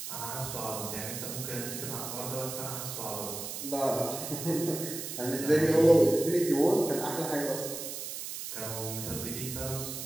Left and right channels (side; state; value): right; noise; hiss, 7 dB below the sound